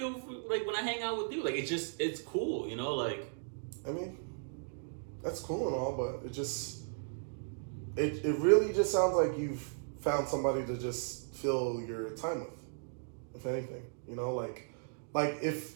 like when I hang out with you. Like, it's cool, you know? Like, I mean, that's cool and all, but it really just sounds like you've found somebody to just fill your time with, if anything. You know,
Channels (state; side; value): silent; left; digital silence